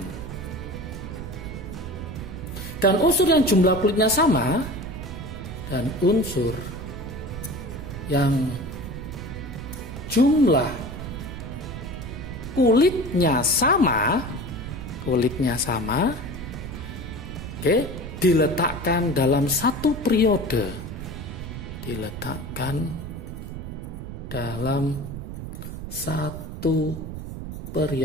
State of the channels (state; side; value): noise; right; rumble, 8 dB below the sound